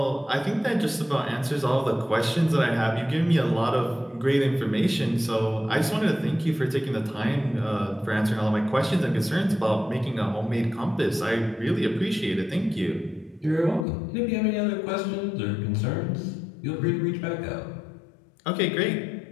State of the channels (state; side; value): drops out; right; at 13.9 s